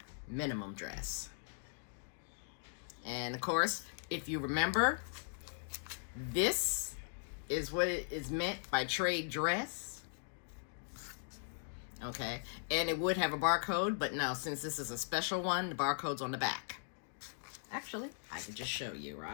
minimum dress. And of course, if you remember, this is what it is meant by trade dress. Okay, and it would have a barcode, but no, since this is a special one, the barcode's on the back. Actually, I can just show you,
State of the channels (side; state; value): right; silent; digital silence